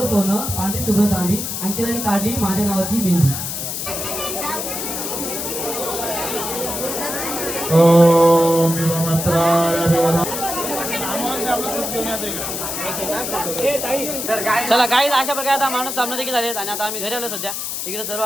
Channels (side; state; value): left; noise; hiss, 4 dB below the sound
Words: सोनं पांढरी शुभ्र चांदी अंकिताने काढली माझ्या नावाची मेहंदी ओम नमस्काराय चला काही अशा प्रकारे आता माणूस सामना देखील झालेत आणि आता आम्ही घरी आलो सध्या इकडे सर्व